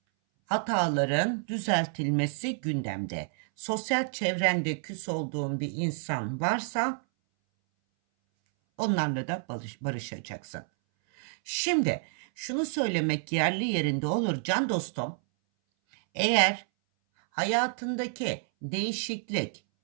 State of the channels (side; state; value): left; silent; 58 dB below the other